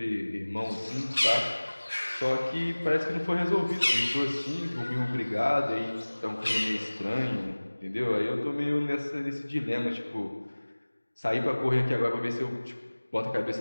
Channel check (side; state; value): both; inverted; correlation -1.00